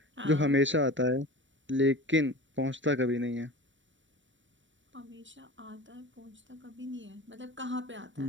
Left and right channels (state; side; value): late; left; 0.55 ms